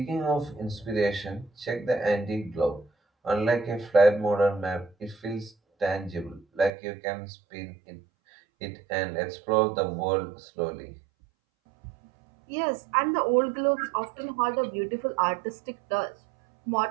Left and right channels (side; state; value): left; drops out; at 6.7 s